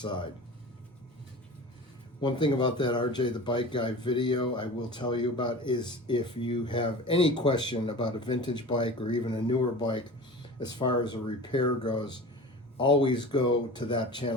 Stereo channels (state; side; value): normal; both; correlation 0.35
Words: One thing about that RJ the Bike Guy video I will tell you about is if you have any question about a vintage bike or even a newer bike as far as a repair goes, always go to that